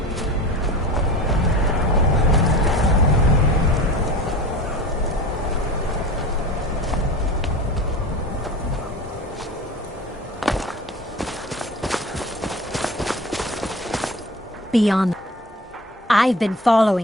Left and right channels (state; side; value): normal; both; correlation 0.37